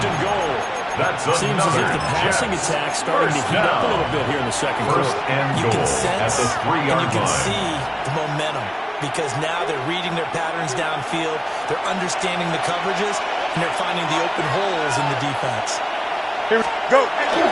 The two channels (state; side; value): identical; both; correlation 1.00